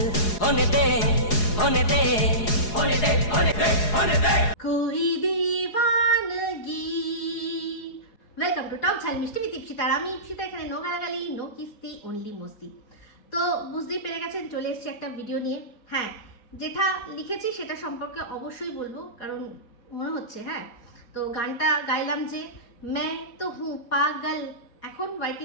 होने दे होने दे होने दे होने दे होने दे कोई दीवानगी। वेलकम टू टॉप झाल मिष्टी विद इप्सिता। আমি ইপসিতা, এখানে নো গালাগালি, নো কিস্তি, অনলি মস্তি। তো বুঝতেই পেরে গেছেন চলে এসেছি একটা ভিডিও নিয়ে। হ্যাঁ, যেটা লিখেছি সেটা সম্পর্কে অবশ্যই বলবো, কারণ মনে হচ্ছে হ্যাঁ তো গানটা গাইলাম যে मैं तो हूँ पागल, এখন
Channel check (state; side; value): late; right; 4.8 ms